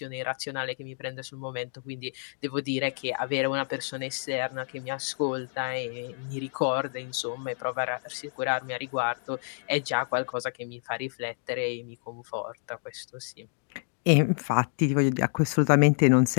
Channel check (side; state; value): right; silent; digital silence